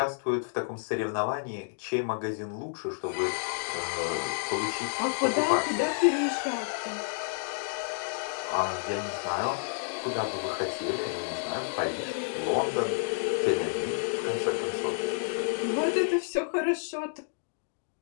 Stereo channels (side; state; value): right; silent; digital silence